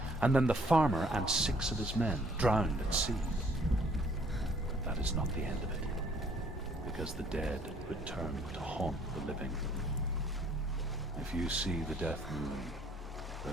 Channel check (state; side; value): normal; both; correlation 0.61